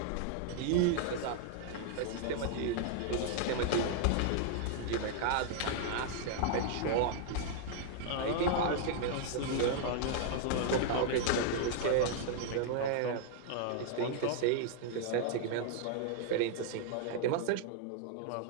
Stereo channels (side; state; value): both; different; correlation 0.00